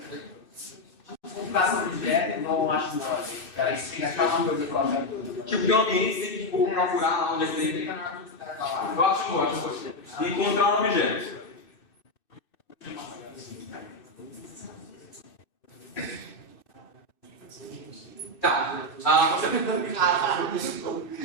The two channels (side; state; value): right; late; 2.6 ms